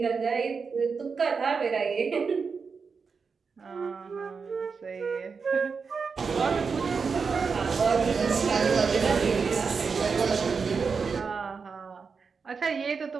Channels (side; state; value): left; quieter; 5.3 dB